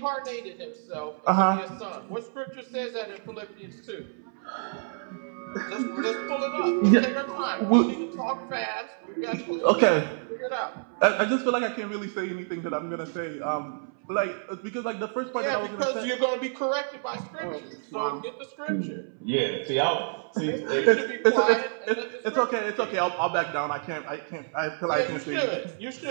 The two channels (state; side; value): silent; left; 59 dB below the other